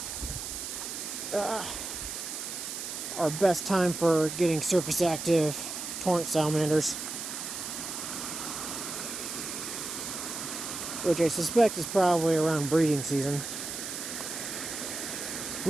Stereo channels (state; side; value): noise; right; hiss, 6 dB below the sound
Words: best time for getting surface active torrent salamanders. Which I suspect is probably around breeding season.